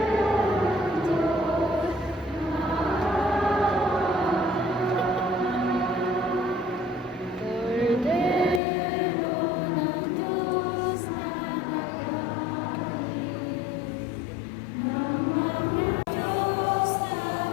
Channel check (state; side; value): drops out; right; at 8.6 s